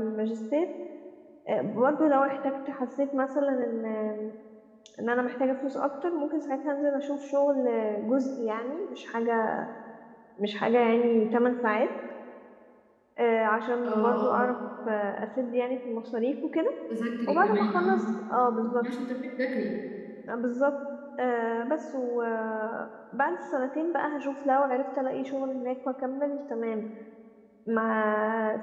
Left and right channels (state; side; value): identical; both; correlation 1.00